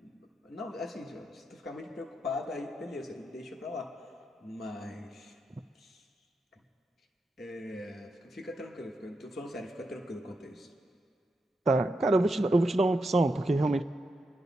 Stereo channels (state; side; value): normal; both; correlation 0.85